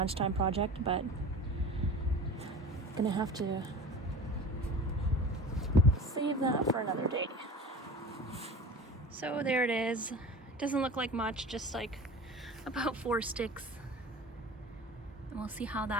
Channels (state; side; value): normal; both; correlation 0.37